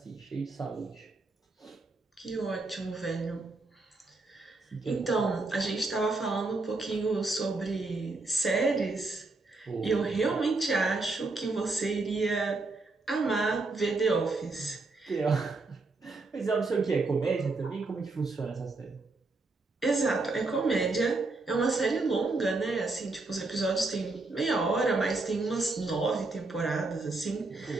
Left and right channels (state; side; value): quieter; left; 3.5 dB